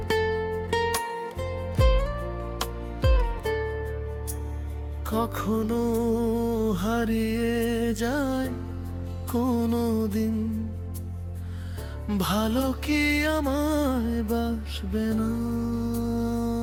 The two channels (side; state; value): both; identical; correlation 1.00